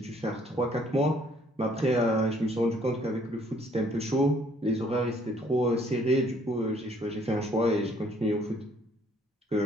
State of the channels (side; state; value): both; normal; correlation 0.62